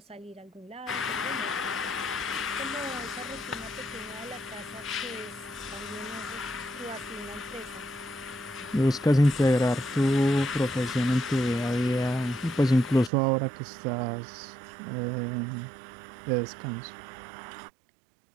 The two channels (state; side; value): drops out; left; at 13.1 s